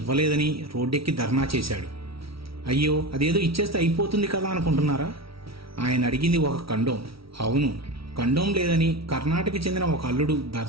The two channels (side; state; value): left; late; 0.75 ms